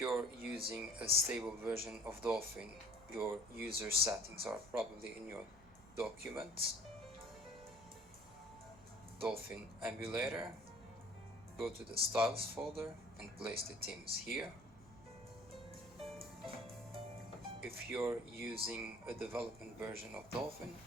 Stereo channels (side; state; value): both; normal; correlation 0.51